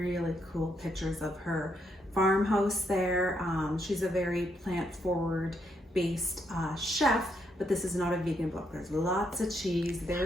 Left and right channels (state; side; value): normal; both; correlation 0.77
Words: cool pictures of her farmhouse there. She's a very plant-forward based chef, but this is not a vegan book. There's lots of cheese,